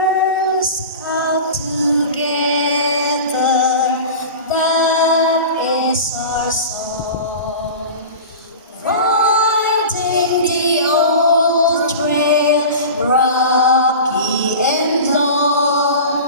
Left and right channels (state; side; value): inverted; both; correlation -0.33